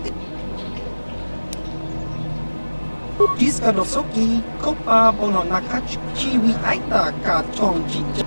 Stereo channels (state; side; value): inverted; both; correlation -1.00